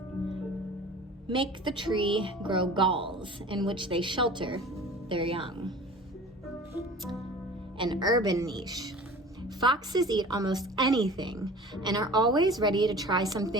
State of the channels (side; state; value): both; normal; correlation 0.41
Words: make the tree grow galls in which they shelter their young. An urban niche. Foxes eat almost anything and are always ready to try